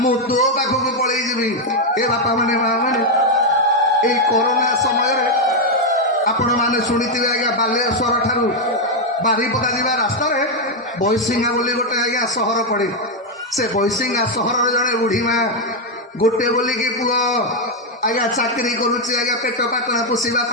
ମୁଁ ତୋ ପାଖକୁ ପଳେଇ ଯିବି ଏ ବାପା ମାନେ ମା ମାନେ ଏଇ କରୋନା ସମୟରେ ଆପଣମାନେ ଶୁଣିଥିବେ ଆଜ୍ଞା ବାଲେଶ୍ୱର ଠାରୁ ବାରିପଦା ଯିବା ରାସ୍ତାରେ ବୈଶିଙ୍ଗା ବୋଲି ଗୋଟେ ଆଜ୍ଞା ସହର ପଡ଼େ ସେ ବୈଶିଙ୍ଗା ସହରର ଜଣେ ବୁଢ଼ୀ ମା ଗୋଟେ ବୋଲିକି ପୁଅ ଆଜ୍ଞା ଚାକିରି କରୁଛି ଆଜ୍ଞା ପେଟ ପାଟଣା ପୋଷିବା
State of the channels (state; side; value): normal; both; correlation 0.02